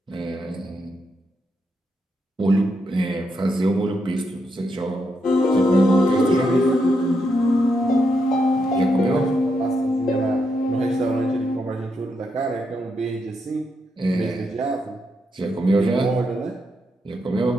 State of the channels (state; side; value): normal; both; correlation 0.81